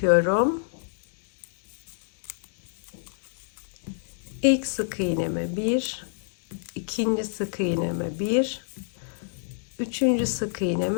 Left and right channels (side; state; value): right; silent; digital silence